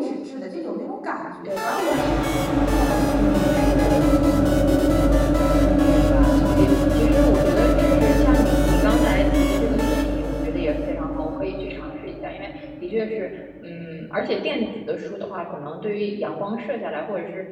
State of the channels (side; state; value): both; identical; correlation 1.00